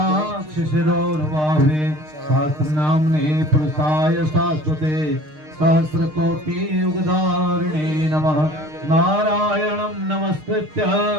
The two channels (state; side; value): late; left; 6.5 ms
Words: सहस्रनाम्ने पुरुषाय शाश्वते सहस्रकोटियुगधारिणे नमः। नारायणं नमस्कृत्य